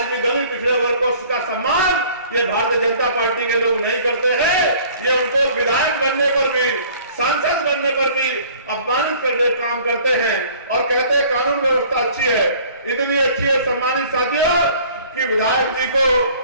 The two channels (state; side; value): inverted; both; correlation -0.52